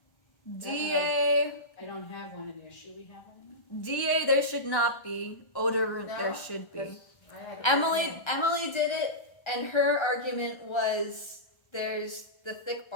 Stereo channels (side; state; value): right; late; 1.3 ms